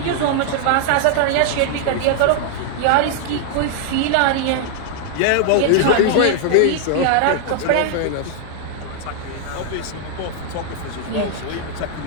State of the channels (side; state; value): both; different; correlation 0.00